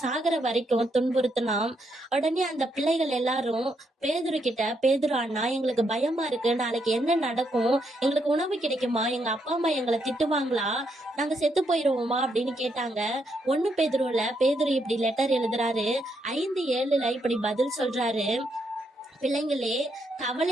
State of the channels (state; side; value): normal; both; correlation 0.77